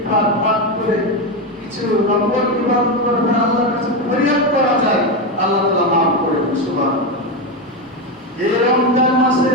পাঠ করে কিছু নফল ইবাদত করে আল্লাহর কাছে ফরিয়াদ করা যায়, আল্লাহ তাআলা মাফ করে দেন। সুবহানাল্লাহ। এই রমজান মাসে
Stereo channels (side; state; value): both; normal; correlation 0.12